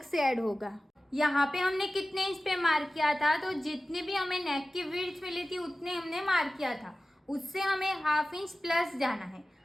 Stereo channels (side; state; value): both; normal; correlation 0.96